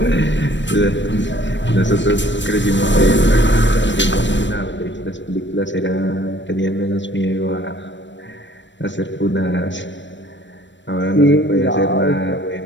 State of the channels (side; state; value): right; late; 0.53 ms